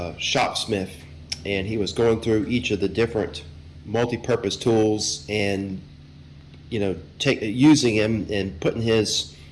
and he was going through each of the different multi-purpose tools and using them and putting his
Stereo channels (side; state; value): both; identical; correlation 1.00